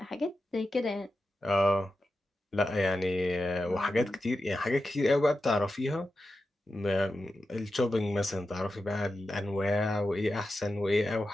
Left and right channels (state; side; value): normal; both; correlation 0.90